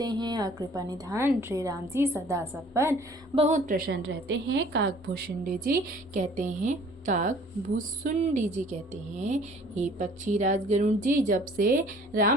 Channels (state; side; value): normal; both; correlation 0.53